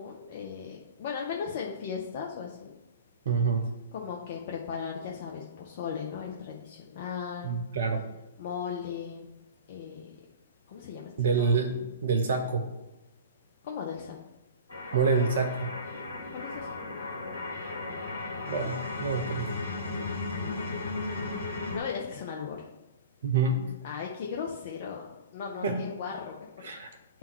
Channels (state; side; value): inverted; both; correlation -0.37